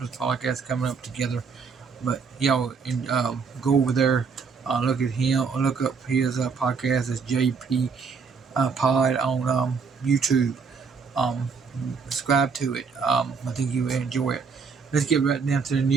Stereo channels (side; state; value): left; quieter; 5.5 dB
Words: podcast coming up together, but go over there, look at him, look up his podcast. It's JP Pod on YouTube. Subscribe to it. I think you will enjoy it. Let's get right down to the